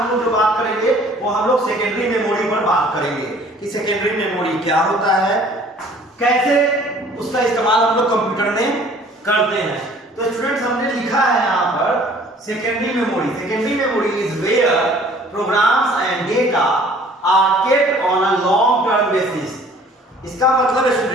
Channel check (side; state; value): both; normal; correlation 0.53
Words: लोग जो बात करेंगे वो हम लोग सेकेंडरी मेमोरी पर बात करेंगे कि सेकेंडरी मेमोरी क्या होता है, कैसे उसका इस्तेमाल हम लोग कंप्यूटर में करते हैं। तो स्टूडेंट्स हमने लिखा है यहाँ पर secondary memory. Secondary memory is where programs and data are kept on a long term basis. इसका मतलब